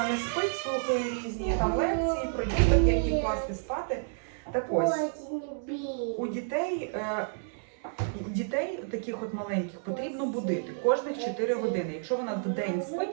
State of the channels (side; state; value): left; silent; digital silence